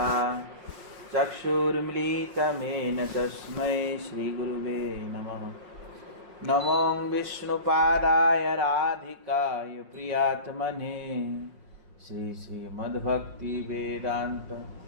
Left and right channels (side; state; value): left; late; 5.5 ms